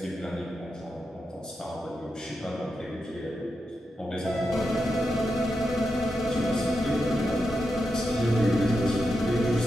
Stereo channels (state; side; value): normal; both; correlation 0.87